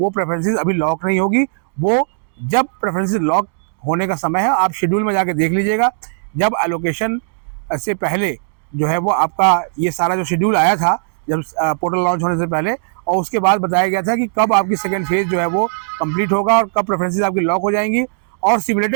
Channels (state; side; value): silent; left; 68 dB below the other